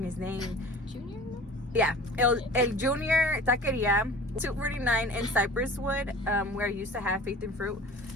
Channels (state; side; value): normal; both; correlation 0.41